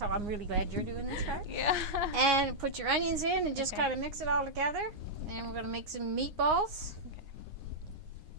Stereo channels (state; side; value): late; left; 9.7 ms